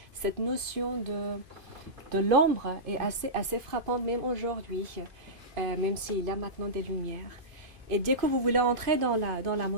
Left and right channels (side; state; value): left; late; 2.5 ms